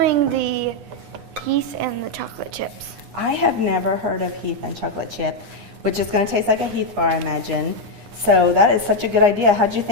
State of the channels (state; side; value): late; left; 9.8 ms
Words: the Heath and the chocolate chips. I have never heard of Heath and chocolate chip, which is going to taste like a Heath bar, I imagine. So that is such a good idea. How'd you